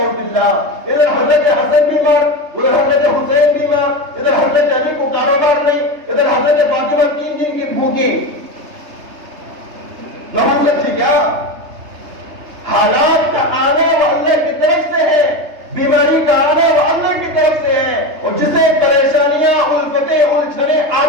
باللہ. ادھر حضرت حسن بیمار, ادھر حضرت حسین بیمار, ادھر حضرت علی کو کاروبار نہیں, ادھر حضرت فاطمہ 3 دن کی بھوکی. نحوست تھی کیا؟ حالات کا آنا وہ اللہ کی طرف سے ہے, بیماری کا آنا وہ اللہ کی طرف سے ہے, اور جسے پریشانیاں الفتیں الجھنیں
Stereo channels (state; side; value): late; left; 3.3 ms